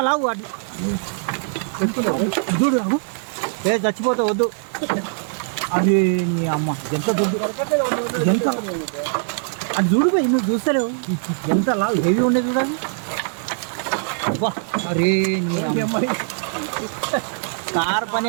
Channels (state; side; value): silent; left; digital silence